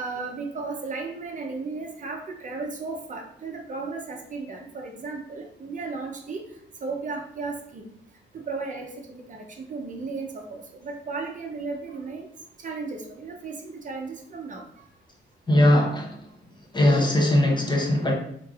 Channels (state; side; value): normal; both; correlation 0.76